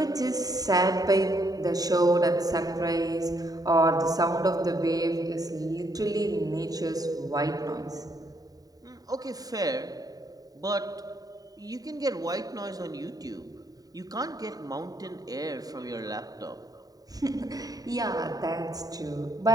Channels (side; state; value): left; late; 0.18 ms